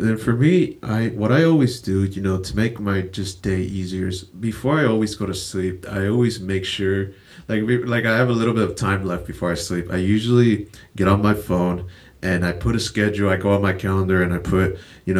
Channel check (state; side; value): identical; both; correlation 1.00